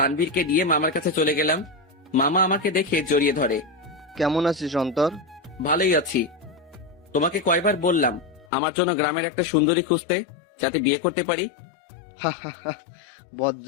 দিয়ে মামার কাছে চলে গেলাম। মামা আমাকে দেখে জড়িয়ে ধরে। কেমন আছিস অন্তর? ভালোই আছি। তোমাকে কয়বার বললাম আমার জন্য গ্রামের একটা সুন্দরী খুঁজতে, যাতে বিয়ে করতে পারি?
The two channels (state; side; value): drops out; right; at 8.5 s